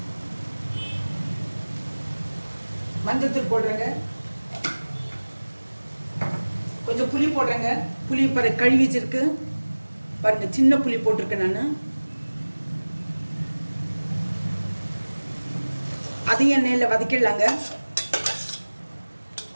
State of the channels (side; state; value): both; inverted; correlation -1.00